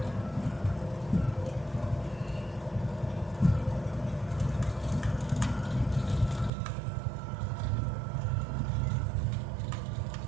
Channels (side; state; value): left; drops out; at 6.5 s